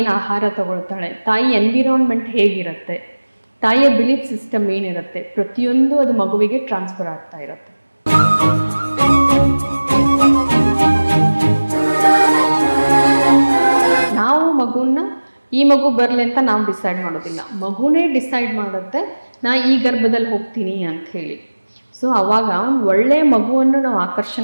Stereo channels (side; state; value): both; inverted; correlation -1.00